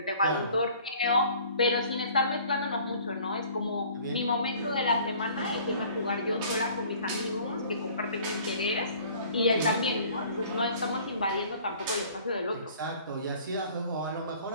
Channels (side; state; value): both; inverted; correlation -0.51